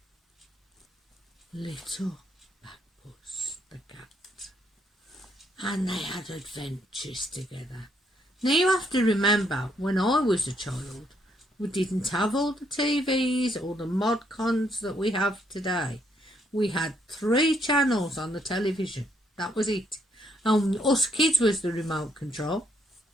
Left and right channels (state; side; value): normal; both; correlation 0.72